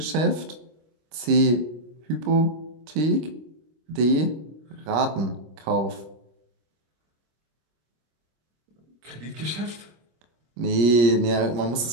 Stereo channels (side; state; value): left; late; 25 ms